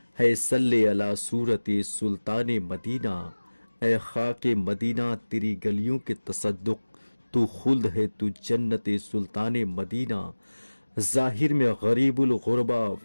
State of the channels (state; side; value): inverted; both; correlation -1.00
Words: ہے، صلی علی صورت سلطان مدینہ، اے خاک مدینہ تیری گلیوں کے تصدق، تو خلد ہے تو جنت سلطان مدینہ، ظاہر میں غریب الغربا